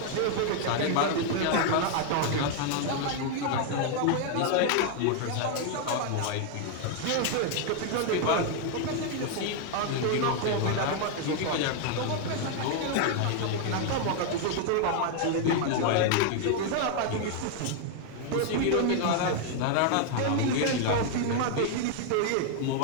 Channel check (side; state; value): both; different; correlation 0.00